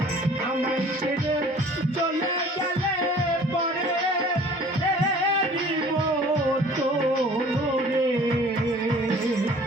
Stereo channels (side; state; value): both; normal; correlation 0.50